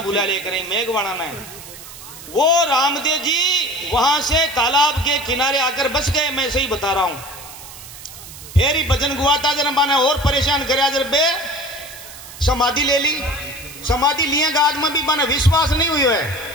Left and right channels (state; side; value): noise; right; hiss, 15 dB below the sound